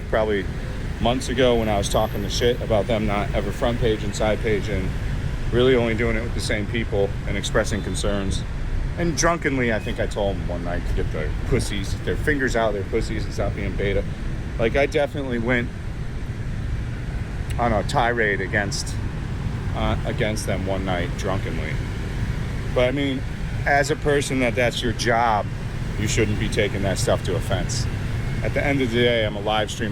probably months ago when I was talking the shit about them not ever front page and side page, and really only doing it with the same people and expressing concerns. And drunkenly, I think I told them one night to get their pussies, their fingers out of their pussies and stop being beta. Like, I definitely went on a tirade against them one night drunkenly. But I mean, as a person that's your job, you shouldn't be taking that stuff to offense. At the end of the day, I'm a live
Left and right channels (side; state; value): both; identical; correlation 1.00